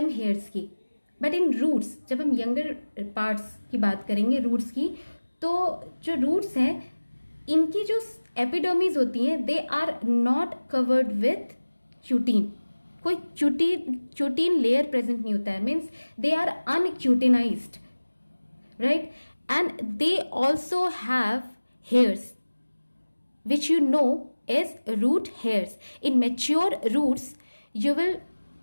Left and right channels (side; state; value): both; inverted; correlation -1.00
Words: हेयर्स की, बट इन रूट्स, जब हम यंगर पार्ट्स की बात करेंगे रूट्स की, तो जो रूट्स हैं इनकी जो एपिडर्मिस होती हैं they are not covered with cutin. कोई क्यूटीन लेयर प्रेजेंट नहीं होता है, means they are uncutinized, right. And they also have hairs which you know as root hairs. In mature roots you will